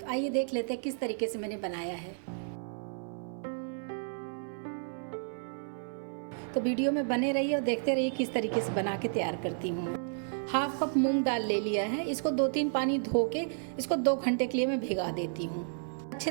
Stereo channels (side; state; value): left; silent; 56 dB below the other